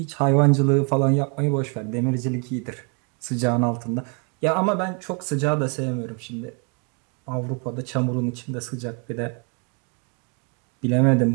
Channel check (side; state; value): left; quieter; 36.2 dB